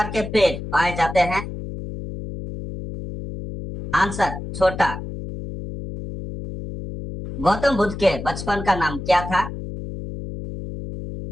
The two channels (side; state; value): left; noise; hum, 9 dB below the sound